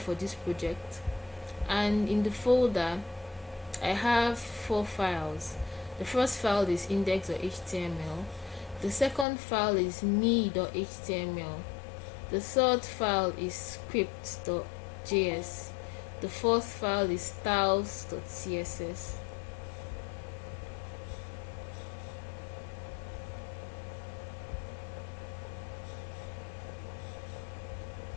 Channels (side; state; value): right; drops out; at 9.2 s